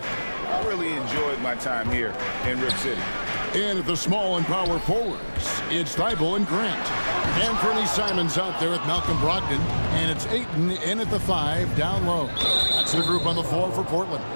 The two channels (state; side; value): inverted; both; correlation -1.00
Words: I really enjoyed my time here in Rip City. And at the small and power forwards, it's Thibault and Grant. Anthony Simons out there with Malcolm Brogdon, and it's Ayton in at the 5 down low. That's the group on the floor for Portland.